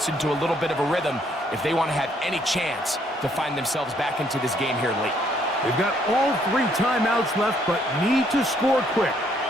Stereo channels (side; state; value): both; normal; correlation 0.68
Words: into a little bit of a rhythm if they want to have any chance to find themselves back into this game here late. They've got all 3 timeouts left, but need to score quick.